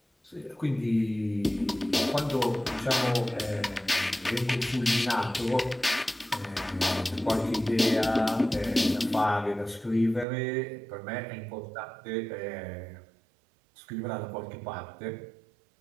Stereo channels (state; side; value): drops out; left; at 10.2 s